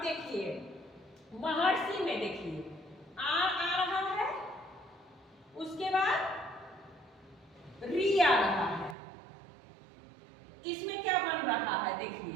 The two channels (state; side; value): drops out; left; at 9.0 s